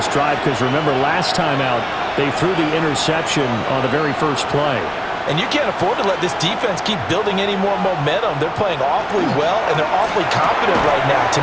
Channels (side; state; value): both; identical; correlation 1.00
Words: drive, because remember last time out, they threw the interception on the very first play. And you can't afford to let this defense keep building any more momentum. They're playing awfully well, and they're awfully confident right now. To